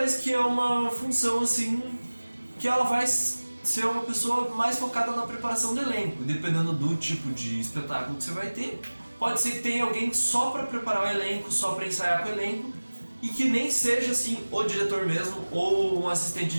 que é uma função assim que ela vai ser uma pessoa mais focada na preparação do elenco, dependendo do tipo de espetáculo que você vai ter. Pode ser que tenha alguém só para preparar o elenco, só para ensaiar com o elenco, e que nem seja assim o diretor mesmo ou um assistente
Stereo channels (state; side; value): inverted; both; correlation -1.00